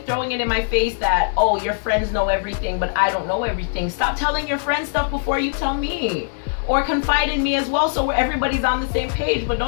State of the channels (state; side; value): silent; right; 65 dB below the other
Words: throwing it in my face that, oh, your friends know everything, but I don't know everything. Stop telling your friends stuff before you tell me. Or confide in me as well, so everybody's on the same page. But